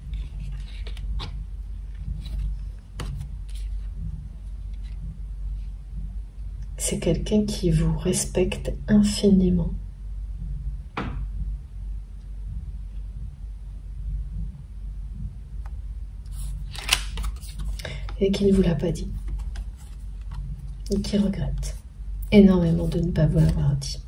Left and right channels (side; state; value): both; identical; correlation 1.00